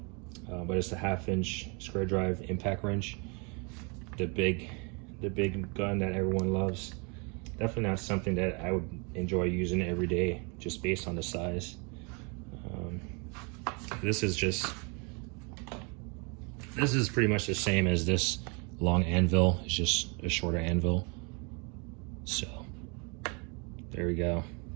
but it's a 1/2-inch square drive impact wrench, the big gun that everyone loves. Definitely not something that I would enjoy using every day, just based on the size. This is pretty much the same as this long anvil. It's just a shorter anvil. So there we go.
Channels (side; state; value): left; quieter; 32.6 dB